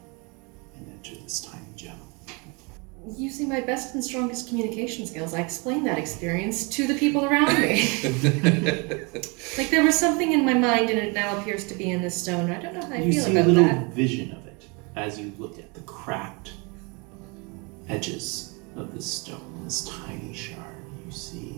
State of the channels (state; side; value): quieter; left; 30.3 dB